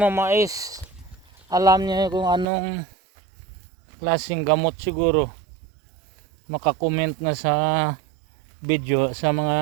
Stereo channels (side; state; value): left; drops out; at 2.5 s